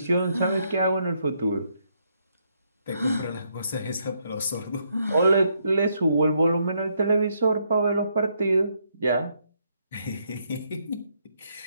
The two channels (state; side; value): inverted; both; correlation -0.75